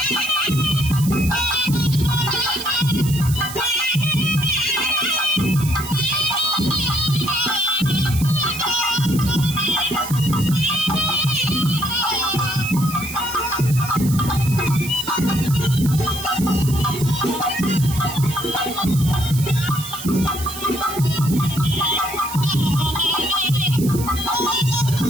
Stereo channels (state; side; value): noise; right; hiss, 10 dB below the sound